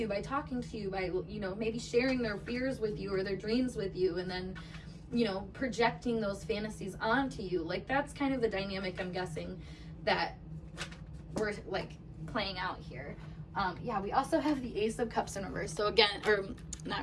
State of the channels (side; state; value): both; identical; correlation 1.00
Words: you by talking to you, by, you know, maybe sharing their fears with you or their dreams with you, and then, you know, projecting those fantasies onto you. Like, that's kind of the dynamic, I'm guessing, that we're, like, playing out here. Yeah, we also have the Ace of Cups in reverse. So again, or not